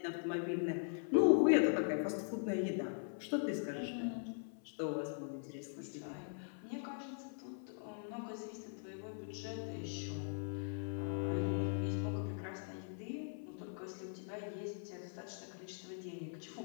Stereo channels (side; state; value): right; silent; 50 dB below the other